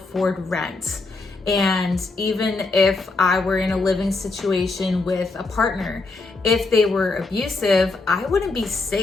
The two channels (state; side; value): quieter; right; 3.6 dB